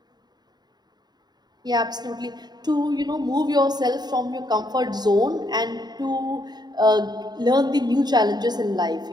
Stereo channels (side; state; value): left; late; 0.20 ms